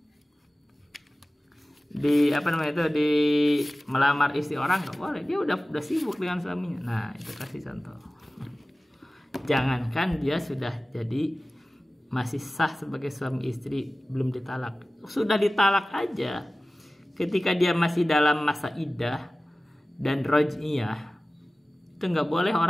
melamar istri orang, nggak boleh. Dia udah sibuk dengan suaminya. Nah itu kasih contoh. Jangankan dia sudah jadi masih sah sebagai suami istri, belum ditalak, sudah ditalak aja, ketika dia masih dalam masa iddah dan roj'iyah, Itu nggak boleh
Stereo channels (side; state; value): both; normal; correlation 0.97